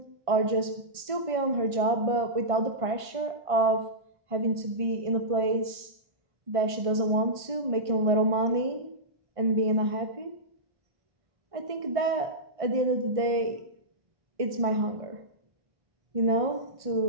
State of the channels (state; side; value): late; left; 1.5 ms